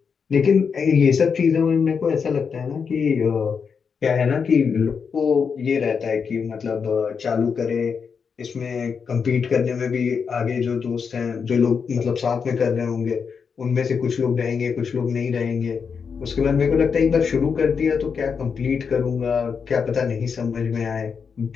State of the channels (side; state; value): right; quieter; 6.0 dB